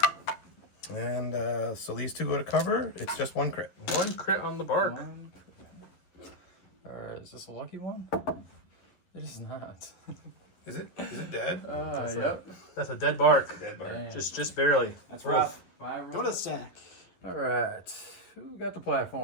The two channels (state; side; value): late; right; 11 ms